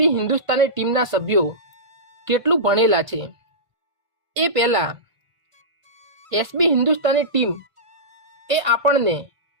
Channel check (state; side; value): late; left; 1.5 ms